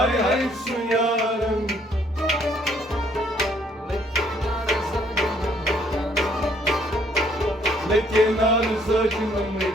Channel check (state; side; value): normal; both; correlation 0.65